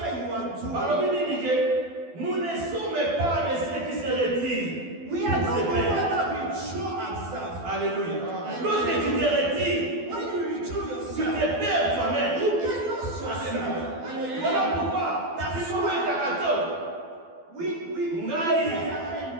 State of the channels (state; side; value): late; left; 12 ms